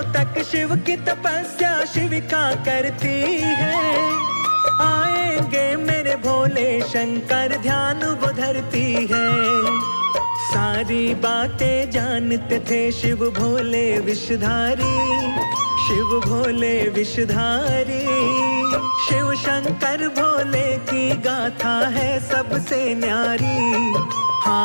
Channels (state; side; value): inverted; both; correlation -1.00